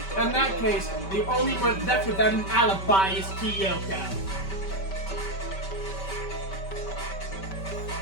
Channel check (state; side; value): late; right; 5.2 ms